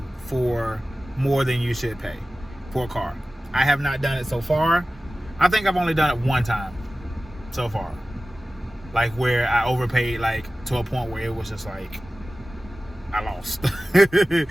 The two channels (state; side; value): normal; both; correlation 0.96